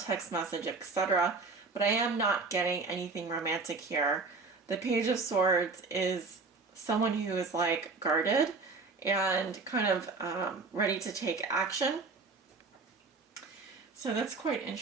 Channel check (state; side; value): quieter; left; 3.9 dB